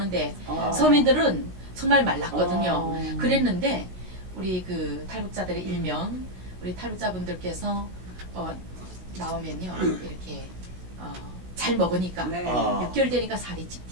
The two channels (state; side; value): late; left; 16 ms